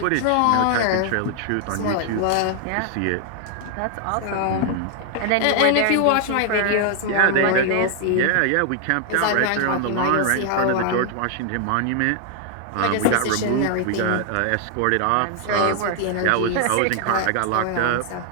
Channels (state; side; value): different; both; correlation 0.00